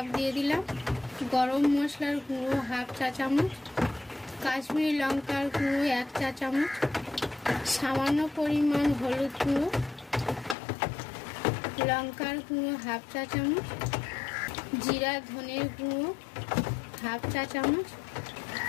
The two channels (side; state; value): right; drops out; at 10.6 s